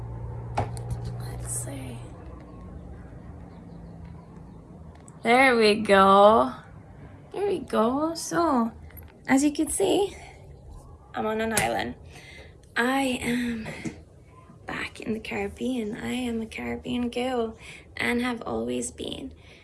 that. Let's see. There we go. There we go. So, as you can see, I'm on an island. I am back in the Caribbean. I am a Caribbean girl and have always been.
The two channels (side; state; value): both; identical; correlation 1.00